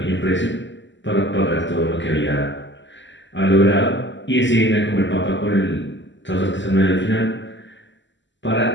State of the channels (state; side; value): late; right; 0.54 ms